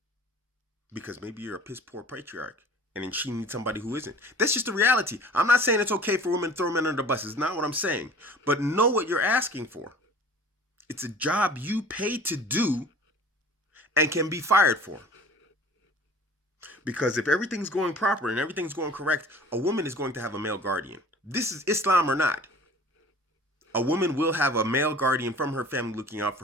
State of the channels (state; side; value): normal; both; correlation 0.45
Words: Because maybe you're a piss poor patriarch and then she needs somebody who isn't. That's just the reality. I'm not saying it's okay for women to throw men under the bus. It's not what I'm saying. But know what you're asking for. It's a job you pay to do and can be fired for. Because if everything's going proper and everything's going correct, a woman is going to have a male guardian. This is Islam or not. A woman will have a male guardian from her family looking out for